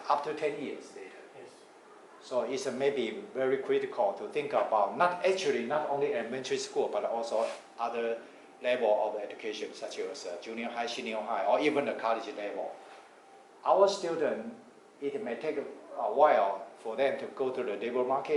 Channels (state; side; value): identical; both; correlation 1.00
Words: after 10 years later. Yes. So it's maybe very critical to think about not only elementary school, but also other level of education, such as junior high, senior high, or even the college level. Our students, it may take a while for them to go to the labor